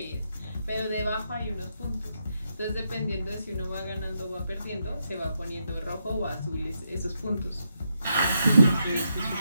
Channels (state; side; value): inverted; both; correlation -0.82